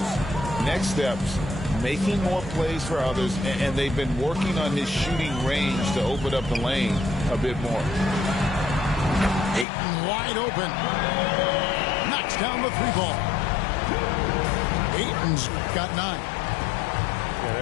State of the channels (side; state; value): right; drops out; at 9.7 s